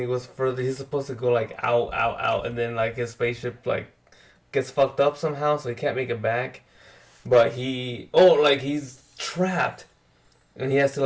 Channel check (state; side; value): identical; both; correlation 1.00